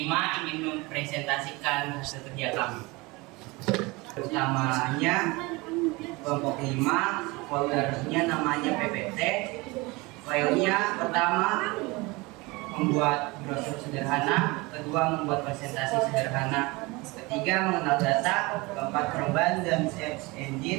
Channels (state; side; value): quieter; left; 24.1 dB